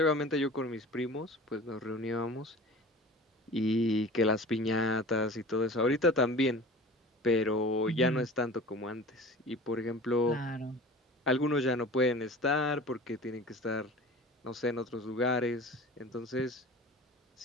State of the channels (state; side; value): normal; both; correlation 0.39